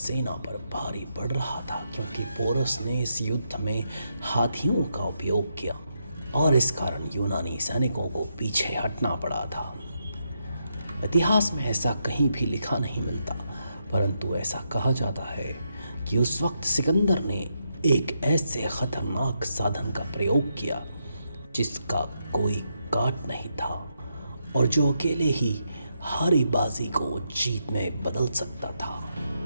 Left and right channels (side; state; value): both; inverted; correlation -0.81